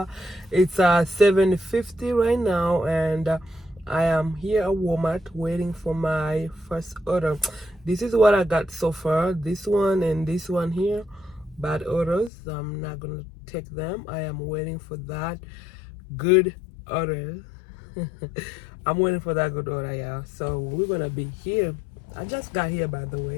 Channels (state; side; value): drops out; right; at 12.3 s